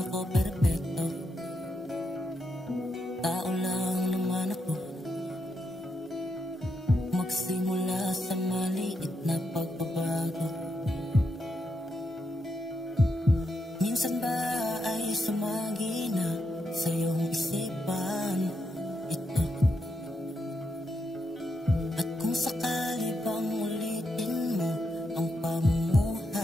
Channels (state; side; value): normal; both; correlation 0.82